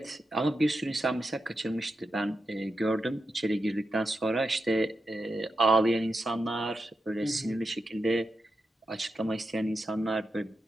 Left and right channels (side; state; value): both; normal; correlation 0.88